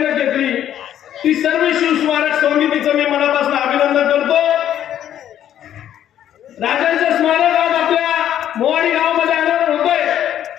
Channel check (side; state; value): right; quieter; 10.8 dB